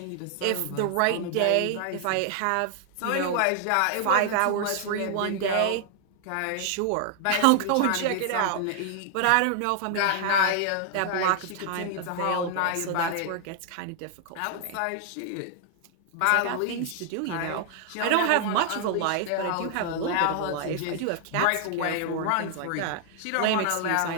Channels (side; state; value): both; different; correlation 0.00